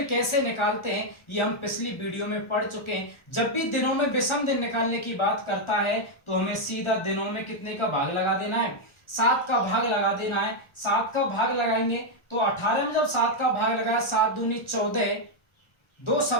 कैसे निकालते हैं ये हम पिछली वीडियो में पढ़ चुके हैं। जब भी दिनों में विषम दिन निकालने की बात करता है तो हमें सीधा दिनों में कितने का भाग लगा देना है, 7 का भाग लगा देना है। 7 का भाग लगाएंगे तो 18 में जब 7 का भाग लगाया, 7 दूनी 14, 2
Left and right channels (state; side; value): late; right; 1.4 ms